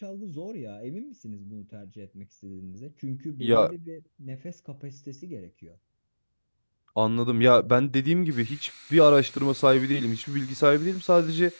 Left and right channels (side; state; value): both; inverted; correlation -1.00